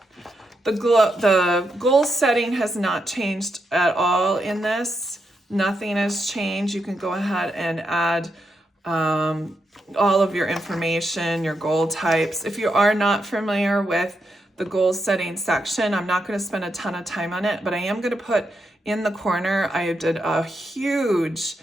The goal setting has not changed at all in this. Nothing has changed. You can go ahead and add all of your information, your goal types. If you are not familiar with the goal setting section, I'm not going to spend a ton of time on it, but I am going to put in the corner, I did a huge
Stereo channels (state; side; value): normal; both; correlation 0.83